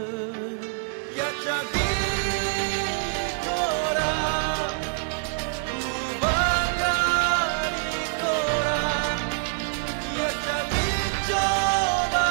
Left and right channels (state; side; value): silent; left; 61 dB below the other